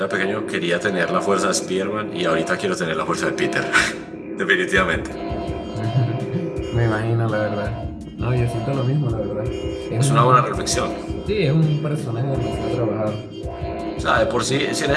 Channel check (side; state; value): both; identical; correlation 1.00